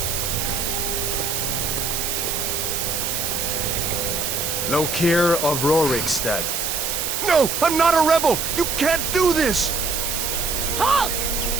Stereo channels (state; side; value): noise; right; hiss, 1 dB below the sound